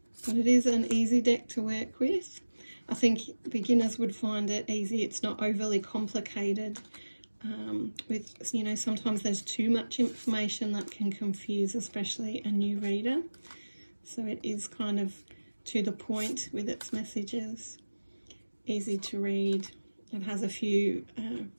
But it is an easy deck to work with. I think beginners would find it easy. It's not overly complicated with, you know, sometimes there's too much information that can confuse, especially a new reader. So it is kind of to the point with its messages, easy to read. It has a few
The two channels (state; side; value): inverted; both; correlation -1.00